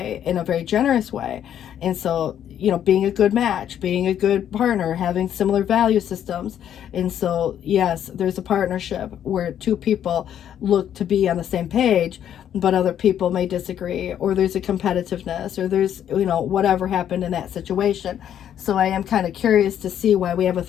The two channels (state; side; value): quieter; right; 10.0 dB